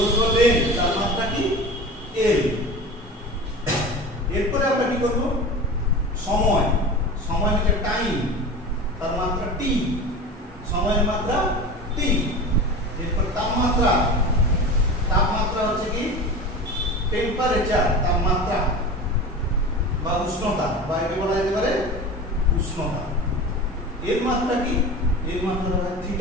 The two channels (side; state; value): both; normal; correlation 0.32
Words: লেন, তার মাত্রা কি? এল। এরপরে আমরা কি করব? সময়, সময় হচ্ছে টাইম, তার মাত্রা টি, সময়ের মাত্রা টি। এরপর তাপমাত্রা, তাপমাত্রা হচ্ছে কি? টেম্পারেচার, তাপমাত্রা বা উষ্ণতা, বা একে বলা যেতে পারে উষ্ণতা। এর মাত্রা কি? এর মাত্রা হচ্ছে